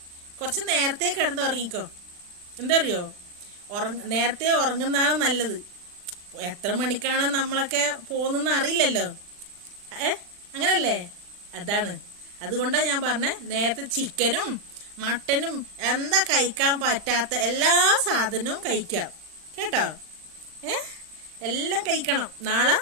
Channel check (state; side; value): late; left; 39 ms